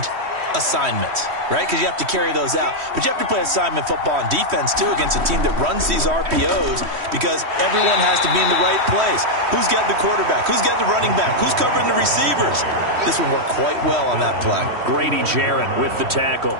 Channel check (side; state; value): left; late; 3.1 ms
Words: assignments, right? Because you have to carry those out. But you have to play assignment football on defense, too, against a team that runs these RPOs because everyone has to be in the right place. Who's getting the quarterback? Who's getting the running back? Who's covering the receivers? This one worked quite well on that play. Grady Jarrett with the tackle.